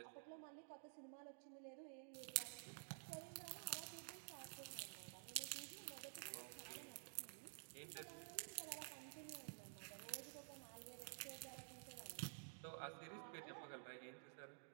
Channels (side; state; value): left; silent; digital silence